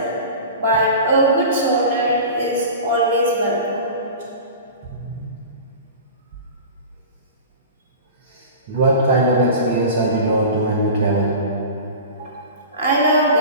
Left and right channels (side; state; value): both; inverted; correlation -0.34